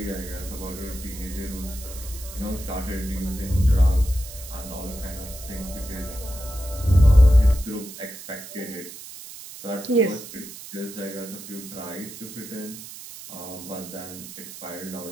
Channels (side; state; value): right; noise; hiss, 13 dB below the sound